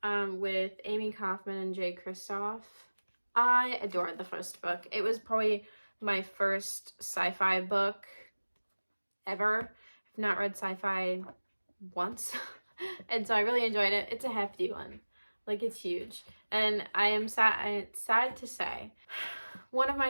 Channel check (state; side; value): inverted; both; correlation -1.00